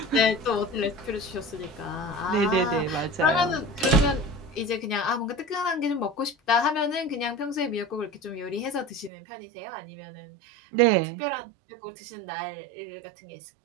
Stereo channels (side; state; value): left; drops out; at 9.1 s